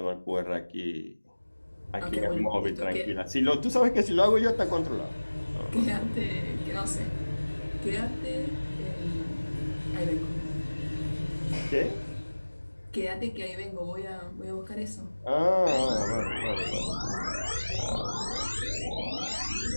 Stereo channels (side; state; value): both; inverted; correlation -1.00